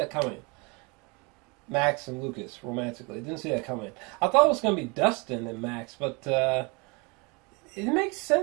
coming. Max and Lucas romantically. Didn't see that coming. I thought it was going to be Dustin and Max, but it makes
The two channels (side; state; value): left; quieter; 29.1 dB